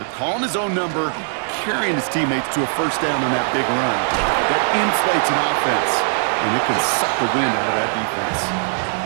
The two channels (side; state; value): left; silent; 58 dB below the other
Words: Calling his own number, carrying his teammates to a first down on that big run. That inflates an offense, and it can suck the wind out of that defense.